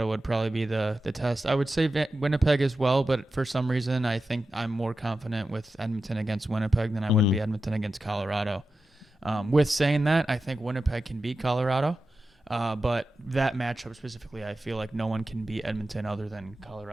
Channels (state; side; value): normal; both; correlation 0.92